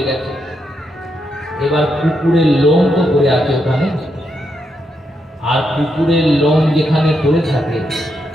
গেছে। এবার কুকুরের লোম তো পড়ে আছে ওখানে, আর কুকুরের লোম যেখানে পড়ে থাকে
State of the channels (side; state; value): both; normal; correlation 0.81